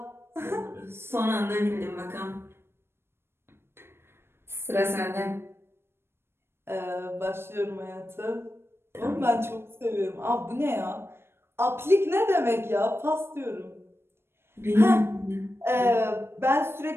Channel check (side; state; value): left; late; 0.12 ms